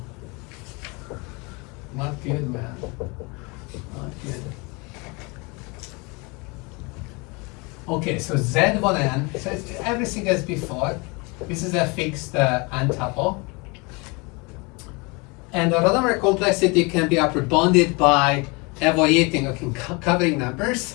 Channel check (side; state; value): right; quieter; 28.4 dB